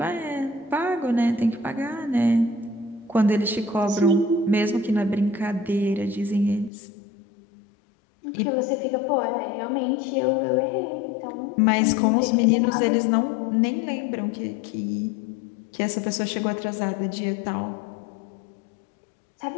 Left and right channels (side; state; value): right; drops out; at 6.7 s